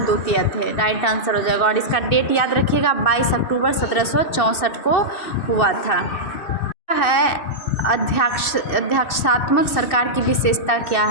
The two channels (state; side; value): late; right; 2.7 ms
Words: द्वितीय थे। राइट आंसर हो जाएगा। और इसका डेट याद रखिएगा 22 अक्टूबर 1764 को हुआ था। है अध्यक्षात्मक सरकार की विशेषता क्या